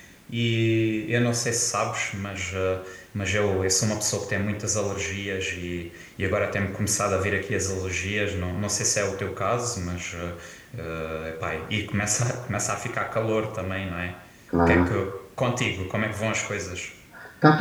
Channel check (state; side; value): identical; both; correlation 1.00